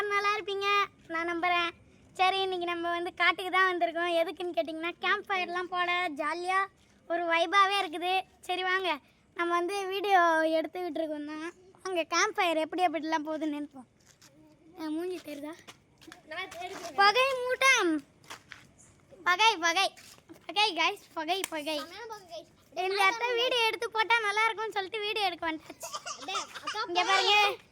நல்லா இருப்பீங்க நான் நம்புகிறேன். சரி, இன்றைக்கி நம்ம வந்து காட்டுக்கு தான் வந்திருக்கோம். எதுக்குன்னு கேட்டிங்கன்னா, கேம்ப் ஃபயர்லாம் போட ஜாலியாக ஒரு வைபாகவே இருக்குது. சரி வாங்க, நம்ம வந்து வீடியோ எடுத்துக்கிட்டு இருக்கோம் தான். அங்கே கேம்ப் ஃபயர் எப்படிலாம் போகுதுன்னு நினைப்போம். மூஞ்சி தெரியுதா? பகை மூட்டம், பகை பகை பகை காய்ஸ், பகை பகை. இந்த இடத்த வீடியோ எடுத்து போட்டால் நல்லா இருக்கும்னு சொல்லிட்டு வீடியோ எடுக்க வந்துட்டாச்சு. இங்கே பாருங்க,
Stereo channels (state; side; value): identical; both; correlation 1.00